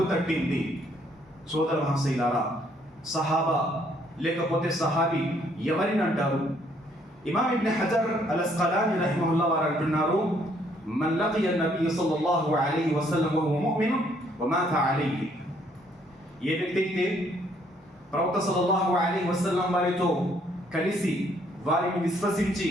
తట్టింది. సోదర మహాశయులారా, సహాబా లేకపోతే సహాబీ ఎవరిని అంటారు? ఇమాం ఇబ్న్ హజర్ అల్ అస్కలాని రహిమహుల్లాహ్ వారు అంటున్నారు, మన్ లకియ నబీ సల్లల్లాహు అలైహి వసల్లం వహువ ముమిన్ వమాత అలైహి. ఏ వ్యక్తి అయితే ప్రవక్త సల్లల్లాహు అలైహి వసల్లం వారితో కలిసి వారిని విశ్వసించి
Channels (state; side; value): normal; both; correlation 0.67